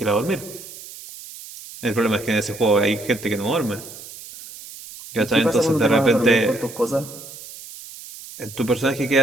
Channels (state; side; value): noise; right; hiss, 15 dB below the sound